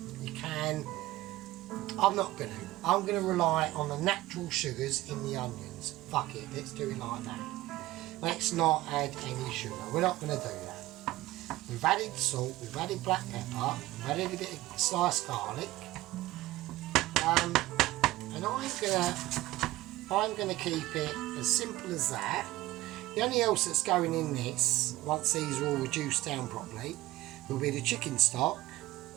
you can. I'm not going to. I'm going to rely on the natural sugars in the onions. Fuck it, let's do it like that. Let's not add any sugar. We're not going to do that. We've added salt, we've added black pepper, we've added a bit of sliced garlic. And I'm gonna keep it as simple as that. The only else that's going in this, once these are all reduced down properly, will be the chicken stock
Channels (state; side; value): quieter; left; 17.2 dB